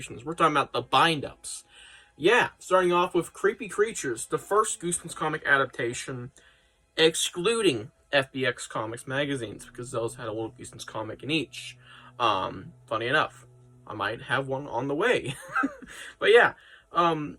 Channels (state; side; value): identical; both; correlation 1.00